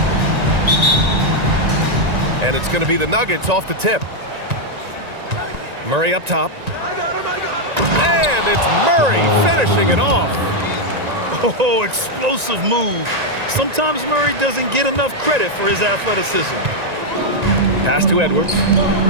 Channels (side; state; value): left; late; 1.9 ms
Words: And it's going to be the Nuggets off the tip. Murray up top. I got him. And it's Murray finishing it off. Oh, explosive move. Sometimes Murray doesn't get enough credit for his athleticism. Pass to Edwards.